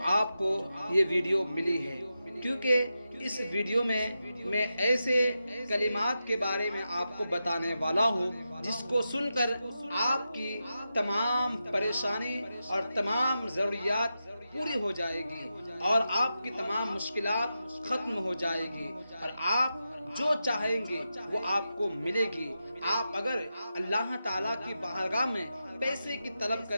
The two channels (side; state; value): both; inverted; correlation -0.90